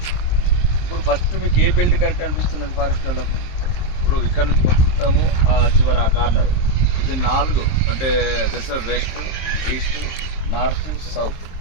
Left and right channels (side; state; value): right; late; 23 ms